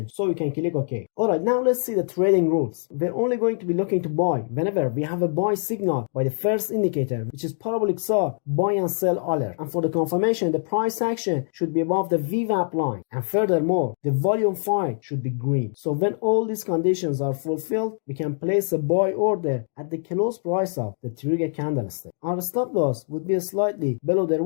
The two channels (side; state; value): right; silent; digital silence